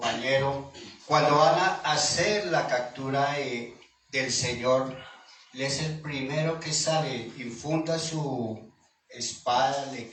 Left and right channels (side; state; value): both; identical; correlation 1.00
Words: cuando van a hacer la captura del Señor, Él es el primero que sale, infunda su espada, le